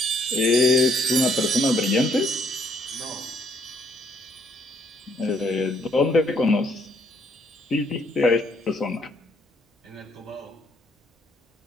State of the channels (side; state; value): both; normal; correlation 0.67